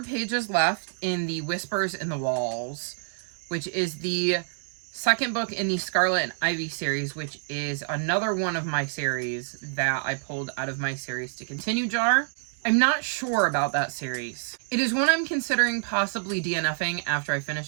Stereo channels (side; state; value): left; silent; digital silence